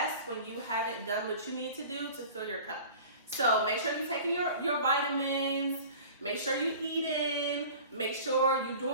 when you haven't done what you need to do to fill your cup. So make sure you're taking your vitamins, make sure you're eating, make sure you're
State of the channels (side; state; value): both; inverted; correlation -0.41